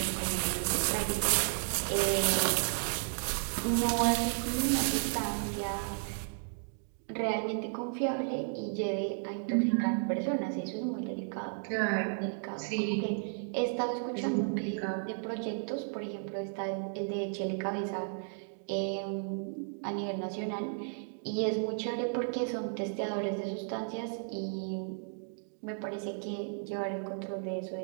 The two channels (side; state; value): left; silent; digital silence